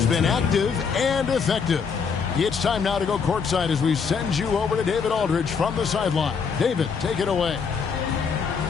been active and effective. It's time now to go courtside as we send you over to David Aldridge from the sideline. David, take it away.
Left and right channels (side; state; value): right; quieter; 5.9 dB